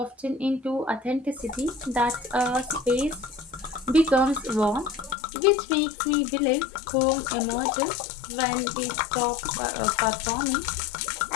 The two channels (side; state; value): right; drops out; at 5.2 s